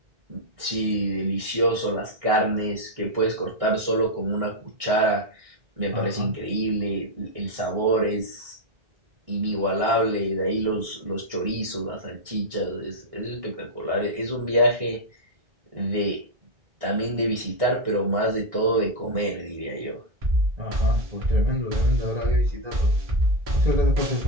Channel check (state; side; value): late; left; 1.6 ms